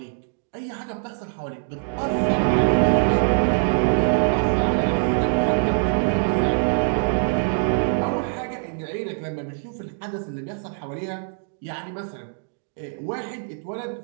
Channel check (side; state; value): left; silent; digital silence